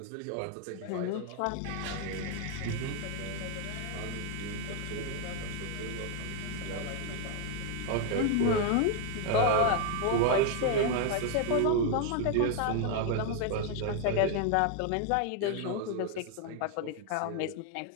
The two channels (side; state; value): both; different; correlation 0.01